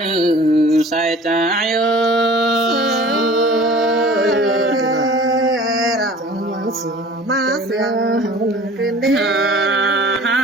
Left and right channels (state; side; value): normal; both; correlation 0.45